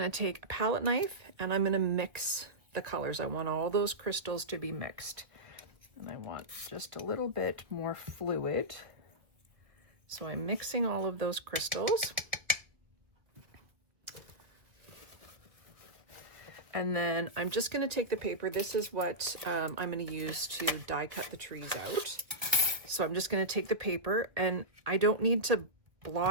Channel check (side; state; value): left; late; 1.5 ms